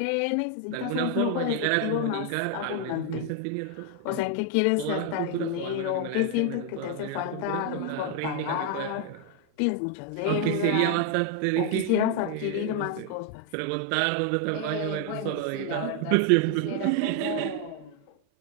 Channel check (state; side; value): different; both; correlation 0.01